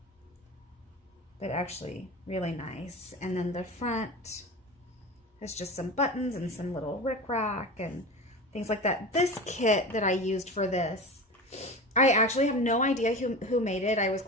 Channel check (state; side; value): normal; both; correlation 0.30